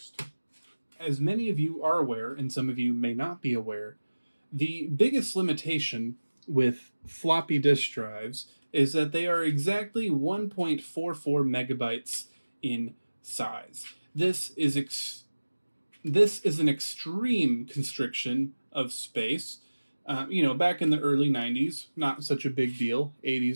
As many of you are aware, and some of you may not be aware, the biggest limitation with floppy disk drives is that they are exactly 1.44 megabytes in size. This is an extreme constriction of space. Back in the early 90s, not such a big deal.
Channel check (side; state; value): both; inverted; correlation -1.00